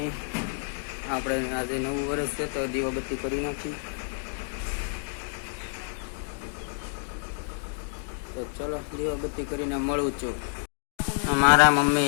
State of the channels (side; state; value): right; silent; 59 dB below the other